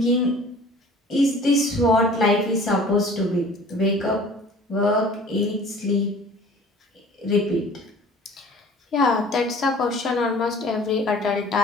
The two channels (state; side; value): normal; both; correlation 0.48